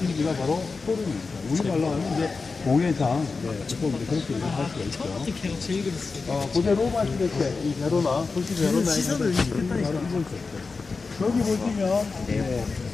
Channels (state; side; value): quieter; right; 4.3 dB